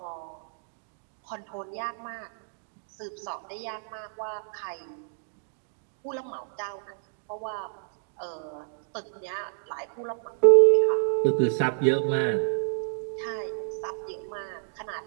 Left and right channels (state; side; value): silent; left; digital silence